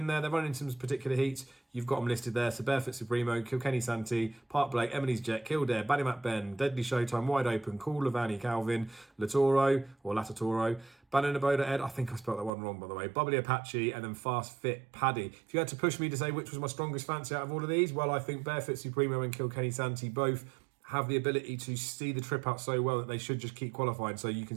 there. They're running some particular heats. You've got them listed there. So Barefoot Supremo, Kilkenny Santee, Park Blake, Emily's Jet, Kildare, Ballymac Ben, Deadly Showtime, Wide Open, Cool Lavani, Calvin, Latoro or Latatoro, Bananaboda Ed, I think I spelled that one wrong by the way, Bubbly Apache, and then Fast Fit Paddy. If you had to push me to say which was my strongest fancy out of all of these, well, I think Barefoot Supremo and Kilkenny Santee both have the ability to see the trip out so well that they should just keep qualifying. So you can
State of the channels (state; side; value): drops out; left; at 12.5 s